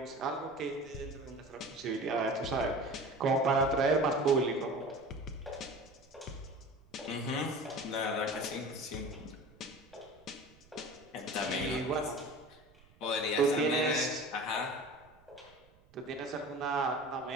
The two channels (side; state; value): right; noise; rumble, 27 dB below the sound